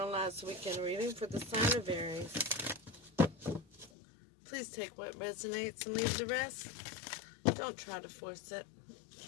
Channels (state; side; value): drops out; right; at 3.9 s